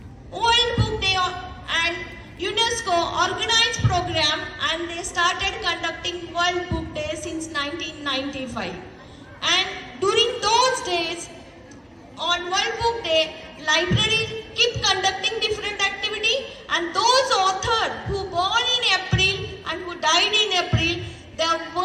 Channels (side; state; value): both; identical; correlation 1.00